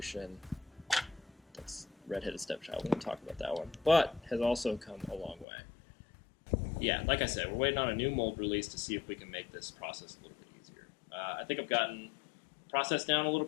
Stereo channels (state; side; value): drops out; right; at 5.5 s